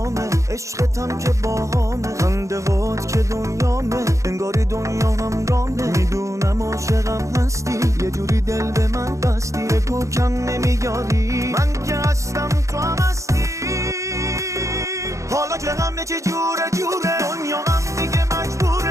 عشقتم که باهامه، خنده هات که دنیامه، انگاری دنیا هم رامه. میدونم عاشقم هستی، یه جوری دل به من بستی، بگو کم نمیاری، من که هستم تو هم هستی. حالا که همه چی جوره جوره، دنیا هم دیگه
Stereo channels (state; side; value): late; left; 0.15 ms